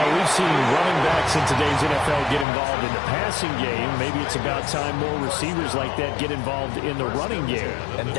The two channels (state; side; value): drops out; right; at 2.5 s